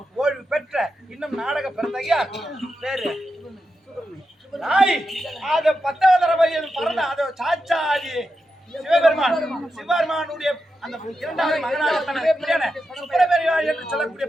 ஓய்வு பெற்ற இன்னும் நாடக பிறந்தகையா பேரு அது 10வது தடவை பறந்த அது சாச்சாதி சிவபெருமானுடைய அந்த 2வது மகனாக சுப்பிரமணியன் என்று சொல்லக்கூடிய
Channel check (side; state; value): both; normal; correlation 0.88